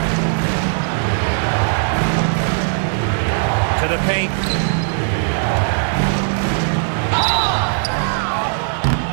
To the paint.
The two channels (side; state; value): left; silent; digital silence